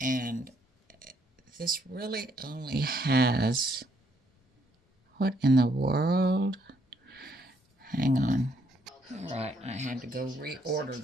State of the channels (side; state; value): both; normal; correlation 0.71